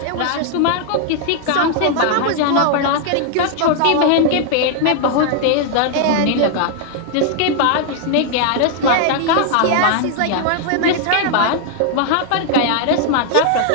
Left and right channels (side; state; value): both; different; correlation 0.00